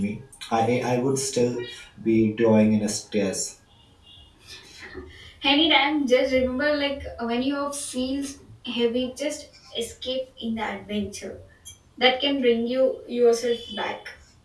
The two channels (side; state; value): both; identical; correlation 1.00